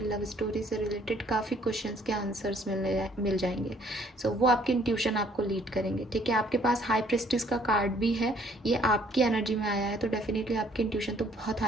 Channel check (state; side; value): normal; both; correlation 0.61